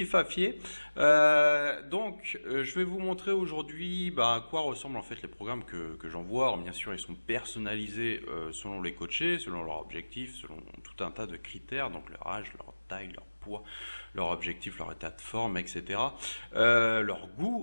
Je vais vous montrer aujourd'hui à quoi ressemblent en fait les programmes que j'envoie. Alors, bien sûr, ils sont personnalisés selon les coachés, selon leurs objectifs, selon tout un tas de critères, donc leur âge, leur taille, leur poids, leur objectif, leur état de forme, etc. Leur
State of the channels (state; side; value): inverted; both; correlation -1.00